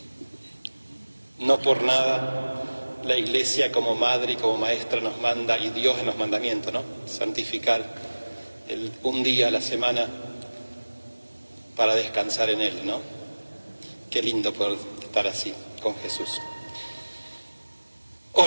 No por nada la Iglesia como madre y como maestra nos manda, y Dios en los mandamientos, ¿no? Santificar un día a la semana para descansar en Él, ¿no? Qué lindo poder estar así con Jesús.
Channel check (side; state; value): both; inverted; correlation -1.00